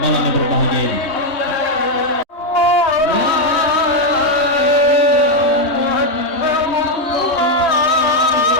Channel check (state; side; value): late; right; 3.2 ms